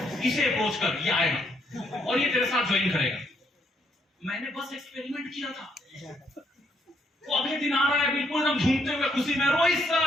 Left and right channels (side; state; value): both; normal; correlation 0.72